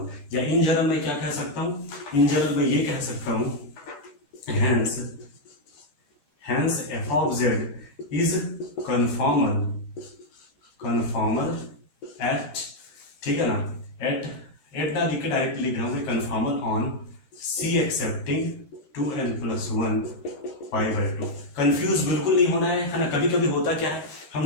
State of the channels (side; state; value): right; late; 14 ms